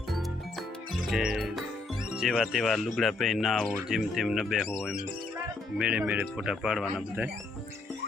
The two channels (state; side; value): quieter; right; 3.4 dB